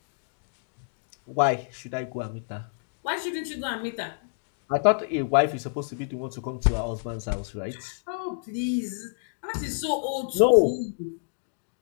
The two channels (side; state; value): right; silent; digital silence